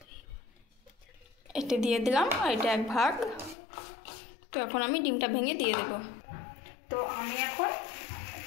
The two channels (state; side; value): drops out; right; at 3.6 s